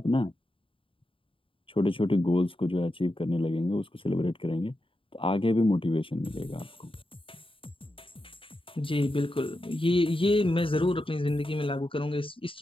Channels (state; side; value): late; right; 0.26 ms